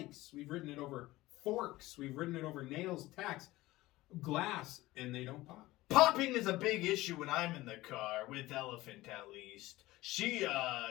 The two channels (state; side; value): quieter; right; 18.2 dB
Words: We've ridden it over forks. We've ridden it over nails, tacks, glass, and they don't pop. Popping is a big issue when I'm in the car, with Elephant at least. She